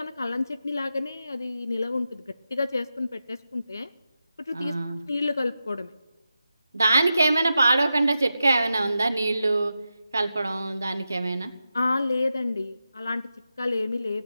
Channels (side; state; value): both; inverted; correlation -0.90